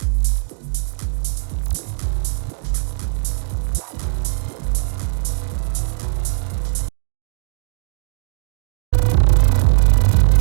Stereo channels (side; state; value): left; silent; 64 dB below the other